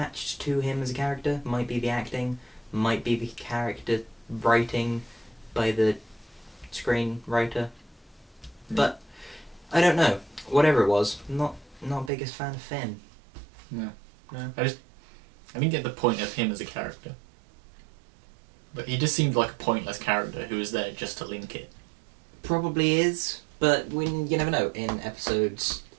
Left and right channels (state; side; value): drops out; left; at 12.1 s